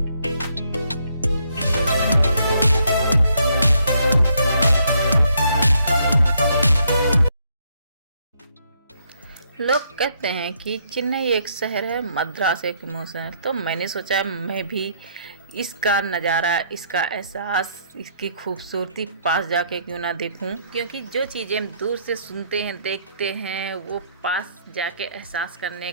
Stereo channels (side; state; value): both; inverted; correlation -0.71